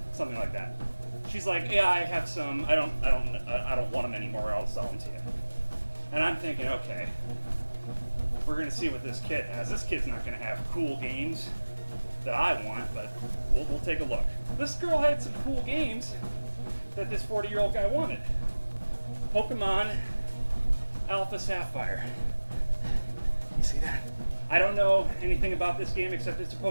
something like that. She's like, yeah, I have some, I don't want them anymore, I'll sell them to you. And I'm thinking, okay, we're gonna see what this kid has. This kid's not gonna have cool games. that I want, but we'll take a look. This girl had some cool games that this 40-year-old guy wanted. Pokemon Alpha Sapphire. You see that? I don't know anything about this game except it's a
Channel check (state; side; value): inverted; both; correlation -1.00